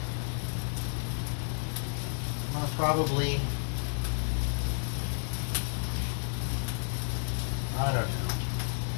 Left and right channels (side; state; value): right; silent; digital silence